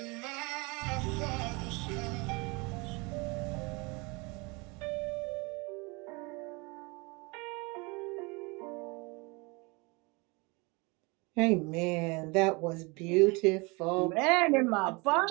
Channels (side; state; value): left; quieter; 27.7 dB